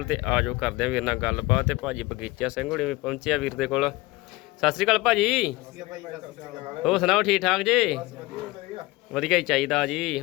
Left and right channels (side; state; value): right; quieter; 20.9 dB